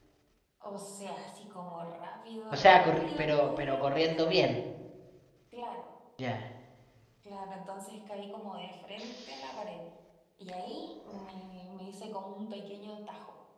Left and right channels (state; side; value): identical; both; correlation 1.00